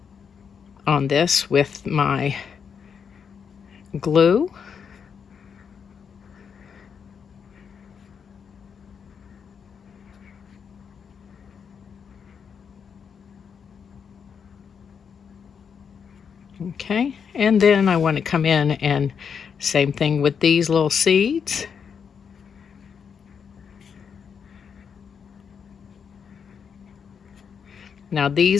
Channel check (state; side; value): quieter; right; 6.8 dB